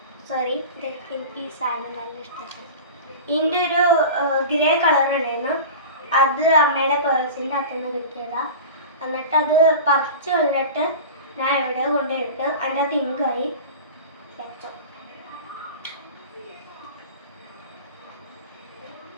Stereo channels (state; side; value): inverted; both; correlation -0.33